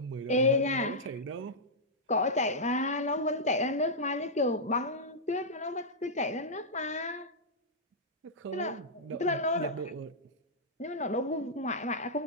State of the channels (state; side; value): normal; both; correlation -0.10